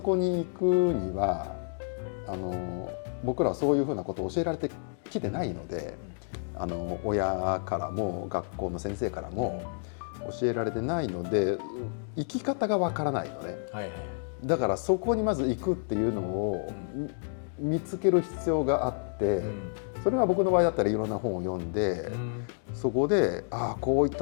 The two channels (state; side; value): silent; right; digital silence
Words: に行くには僕らはそういうふうなことを教えられてきてないので、親からも学校の先生からも教えられてないので生き方がわからないのね。だからそこにまず行くっていうのを見つける必要があって、それは僕の場合だったらいろんな本を読んで、そこでこういっ